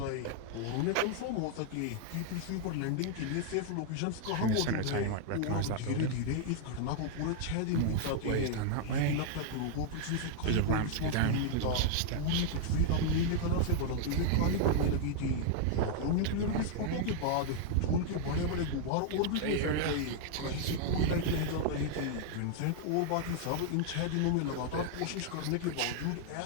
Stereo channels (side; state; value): both; different; correlation 0.00